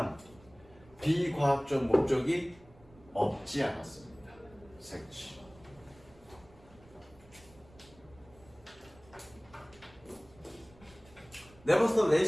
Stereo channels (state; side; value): noise; right; rumble, 25 dB below the sound